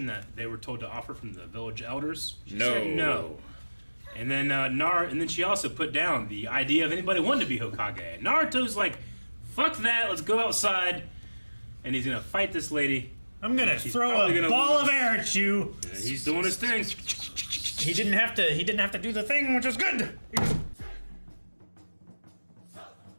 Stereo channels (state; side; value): inverted; both; correlation -1.00